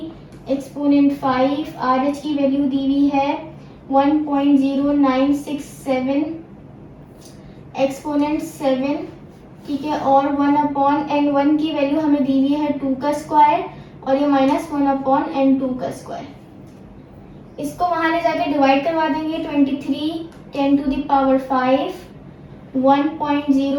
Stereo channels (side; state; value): both; identical; correlation 1.00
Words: एक्सपोनेंट 5, RH की वैल्यू दी हुई है 1.0967 एक्सपोनेंट 7, ठीक है, और 1/n1 की वैल्यू हमें दी हुई है 2 का स्क्वायर और ये -1/n2 का स्क्वायर। इसको वहां ले जाके डिवाइड करवा देंगे। 23 10⁵